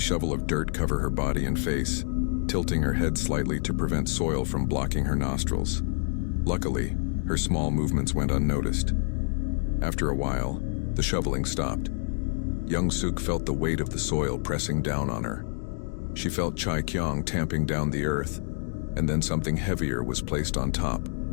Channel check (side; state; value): right; silent; digital silence